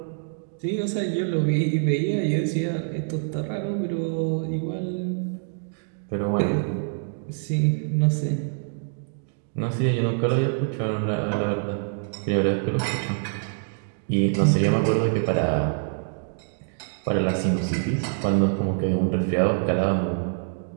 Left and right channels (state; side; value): silent; left; digital silence